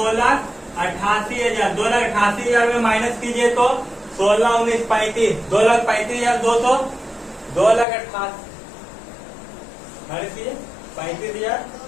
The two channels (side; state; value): right; drops out; at 7.9 s